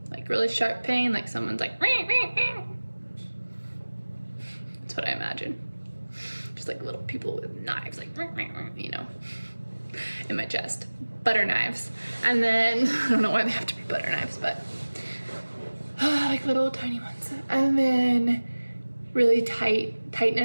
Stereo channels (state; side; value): inverted; both; correlation -1.00